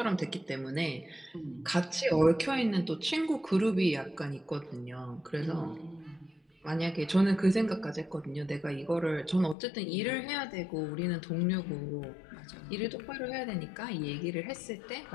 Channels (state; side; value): drops out; right; at 9.6 s